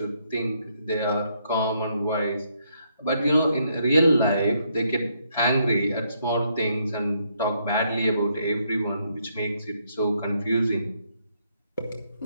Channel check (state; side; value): inverted; both; correlation -0.73